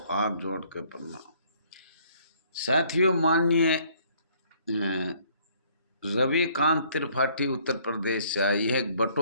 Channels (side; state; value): both; inverted; correlation -0.61